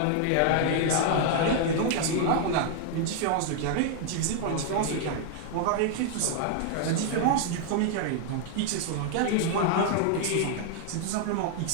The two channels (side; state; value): both; different; correlation 0.00